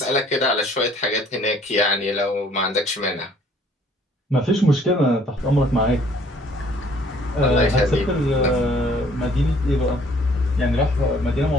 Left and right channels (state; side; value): normal; both; correlation 0.59